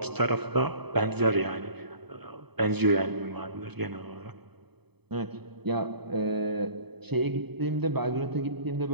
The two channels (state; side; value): late; left; 0.98 ms